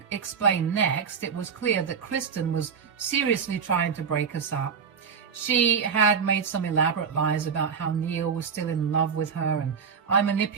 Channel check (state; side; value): quieter; left; 6.4 dB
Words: explained next, it was clear that Kristen was seriously trying to break us up. She had made some elaborate lies about how Neil was still in love with her, and I